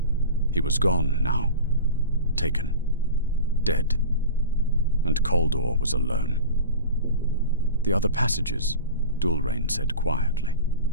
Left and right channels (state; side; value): inverted; both; correlation -0.31